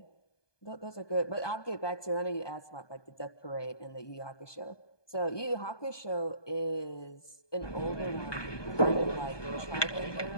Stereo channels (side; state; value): right; late; 1.2 ms